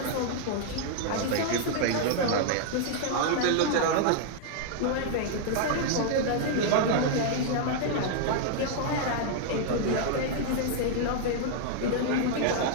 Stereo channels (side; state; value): both; different; correlation 0.00